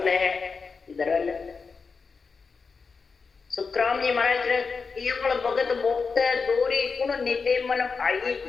है दरल। सुखराम जी महाराज केवल भगत भोक्त दोरी गुण निते मन भाई।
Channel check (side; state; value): right; quieter; 4.9 dB